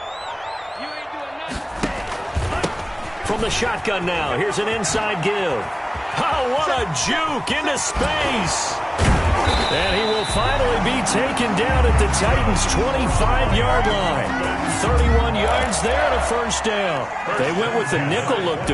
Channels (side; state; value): both; identical; correlation 1.00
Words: From the shotgun now, here's an inside give. Oh, what a juke into space. And he will finally be taken down at the Titans' 25-yard line. 31 yards there and a first down. They went with the nickel look